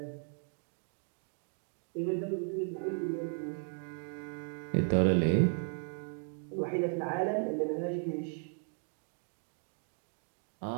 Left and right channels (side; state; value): left; silent; 54 dB below the other